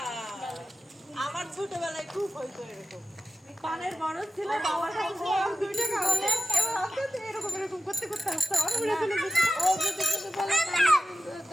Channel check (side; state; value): both; normal; correlation 0.94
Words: আমার ছোটবেলায় খুব হইতো এরকম, পানের বরফ ছিল বাবার কাছে দুইটা খাওয়ালে এবার আস্তে এরকম এরকম করতে করতে আসতে আমার মনে চলে যেত। ও যদি কিছু বলে